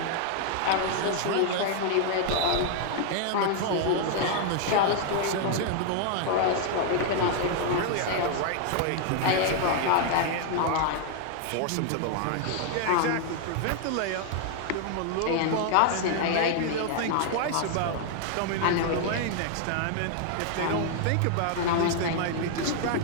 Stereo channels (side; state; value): both; different; correlation 0.00